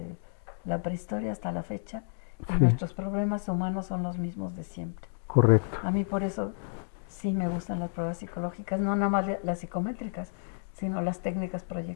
la prehistoria hasta la fecha y nuestros problemas humanos son los mismos de siempre. Correcto. A mí por eso sí me gustan las pruebas psicológicas, no nada más las psicométricas, sino las técnicas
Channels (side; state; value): right; silent; digital silence